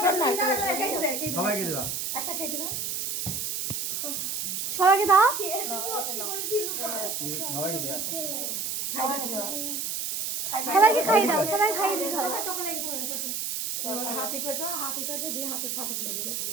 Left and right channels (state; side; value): noise; right; hiss, 2 dB below the sound